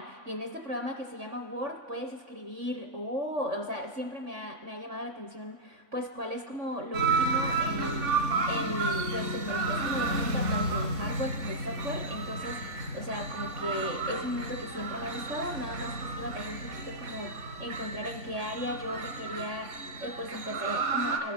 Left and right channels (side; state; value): left; late; 3.5 ms